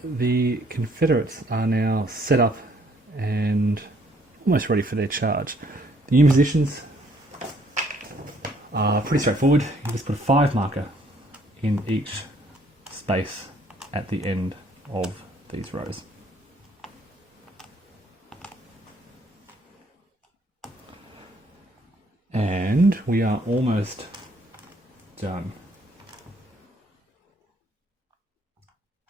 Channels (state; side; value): normal; both; correlation 0.64